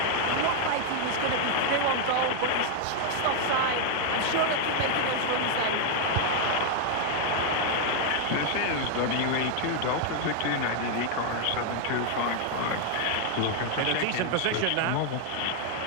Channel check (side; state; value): both; different; correlation 0.00